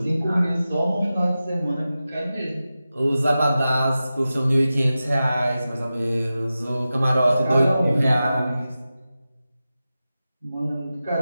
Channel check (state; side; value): inverted; both; correlation -0.93